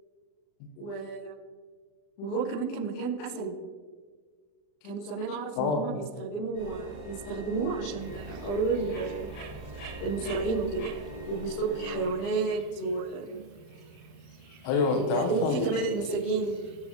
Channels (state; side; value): late; right; 40 ms